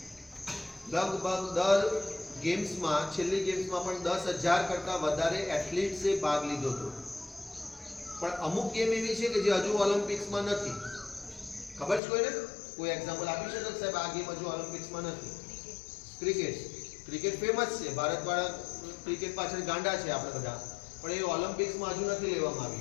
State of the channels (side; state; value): right; drops out; at 12.0 s